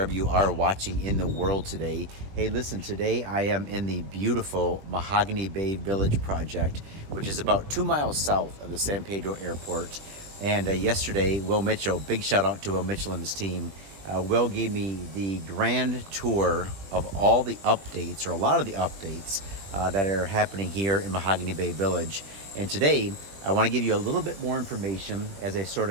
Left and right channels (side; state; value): left; late; 20 ms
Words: you are watching in the world today. Hey, listen, today I am in the beautiful Mahogany Bay Village project, which is about 2 miles south of the San Pedro Airport. And yesterday, Will Mitchell, big shout out to Will Mitchell and his team, Will gave me the grand tour of all the updates, or a lot of the updates that are happening here in Mahogany Bay Village. And today, I want to give you a little bit more information as I sort